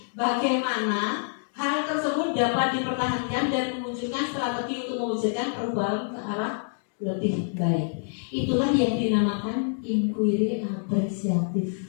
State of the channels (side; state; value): right; silent; digital silence